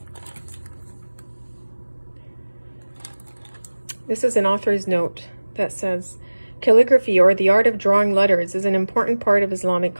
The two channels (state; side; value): inverted; both; correlation -1.00